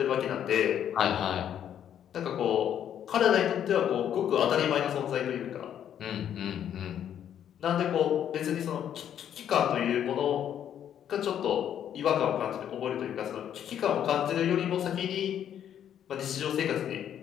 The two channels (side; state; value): right; quieter; 9.8 dB